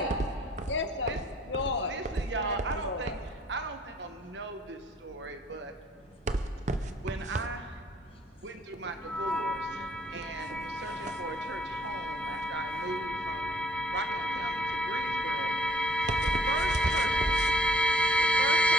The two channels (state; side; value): normal; both; correlation 0.60